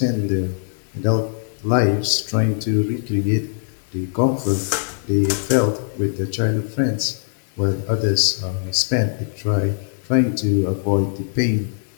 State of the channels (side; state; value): right; silent; 62 dB below the other